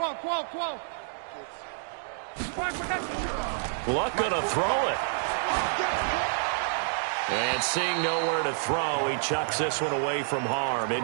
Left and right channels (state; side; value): silent; left; digital silence